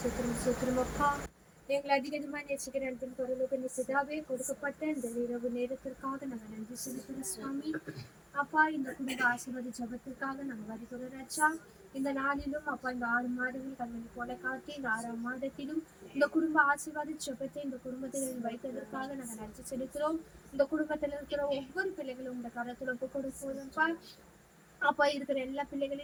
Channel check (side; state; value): both; identical; correlation 1.00